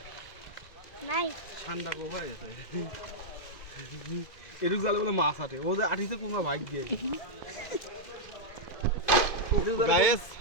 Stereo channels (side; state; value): right; late; 2.6 ms